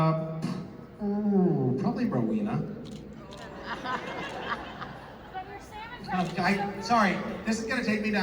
Probably Rowena. But you're Sam Sorry, this is gonna take me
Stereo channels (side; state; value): both; identical; correlation 1.00